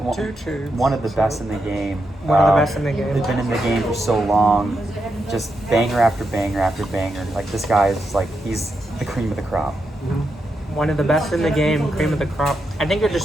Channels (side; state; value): both; normal; correlation 0.84